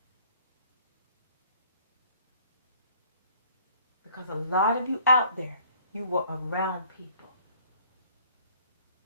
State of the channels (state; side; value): inverted; both; correlation -0.57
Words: Because a lot of you out there, you were around people